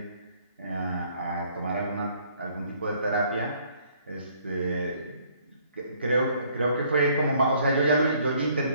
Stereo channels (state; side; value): inverted; both; correlation -0.62